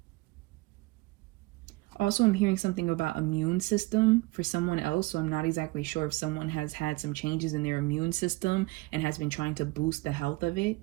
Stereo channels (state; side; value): quieter; left; 22.2 dB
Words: Also, I'm hearing something about immune system for someone else, so I'm not exactly sure if someone has had some changes in their immune system and has been trying to boost the health of it.